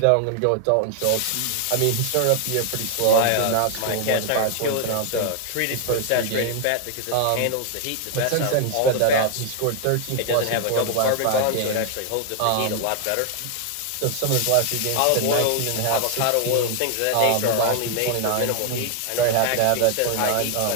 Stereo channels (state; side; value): different; both; correlation 0.00